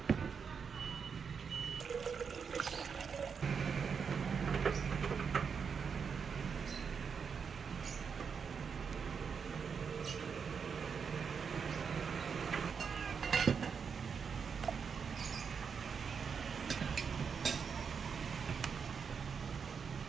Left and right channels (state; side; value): quieter; left; 6.2 dB